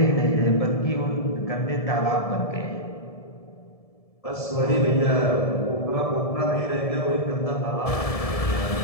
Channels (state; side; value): late; right; 1.7 ms